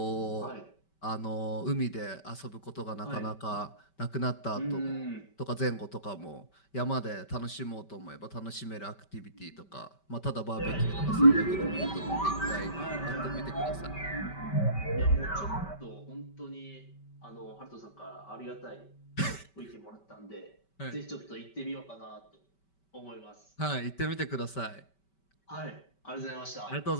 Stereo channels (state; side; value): late; right; 5.2 ms